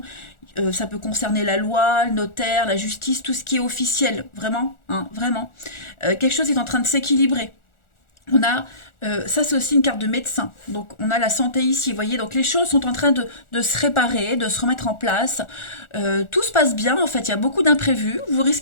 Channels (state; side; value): late; right; 1.4 ms